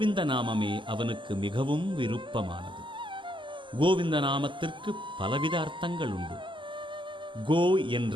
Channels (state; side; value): late; left; 0.24 ms